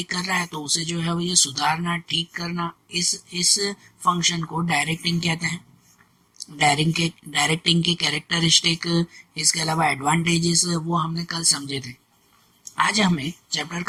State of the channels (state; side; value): identical; both; correlation 1.00